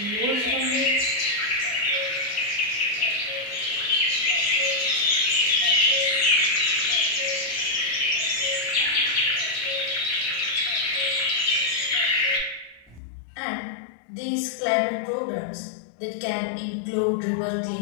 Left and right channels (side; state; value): right; drops out; at 13.0 s